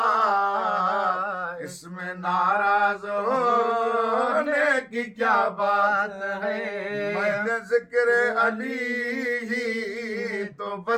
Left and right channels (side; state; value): both; identical; correlation 1.00